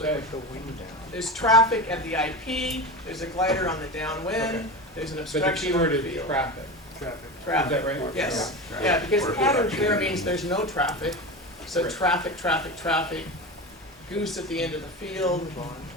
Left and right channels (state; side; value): normal; both; correlation 0.25